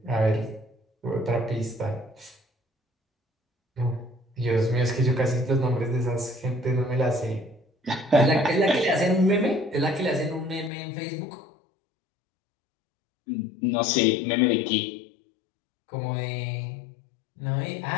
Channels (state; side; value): drops out; right; at 10.7 s